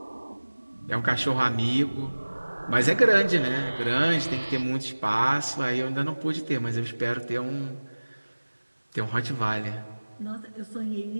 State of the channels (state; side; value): inverted; both; correlation -1.00